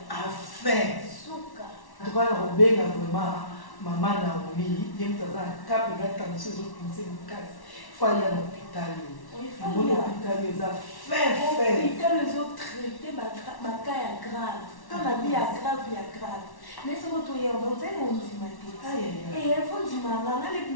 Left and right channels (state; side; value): late; right; 1.1 ms